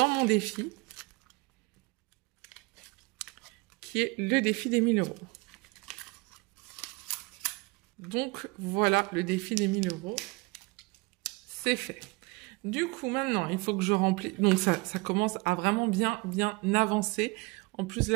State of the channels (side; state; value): left; quieter; 26.0 dB